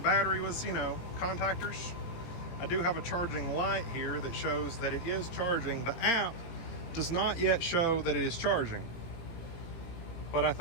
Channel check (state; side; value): late; right; 18 ms